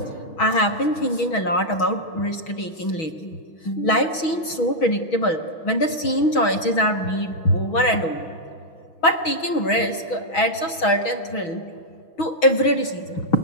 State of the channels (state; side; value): late; right; 6.2 ms